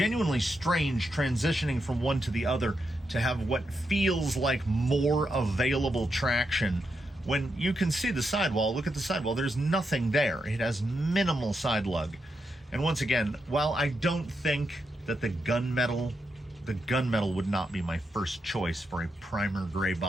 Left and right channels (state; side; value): normal; both; correlation 0.84